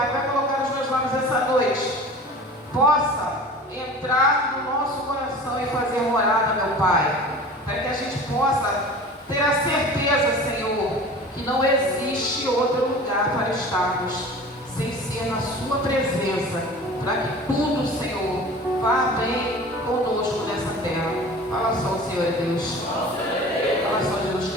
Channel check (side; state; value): both; normal; correlation 0.39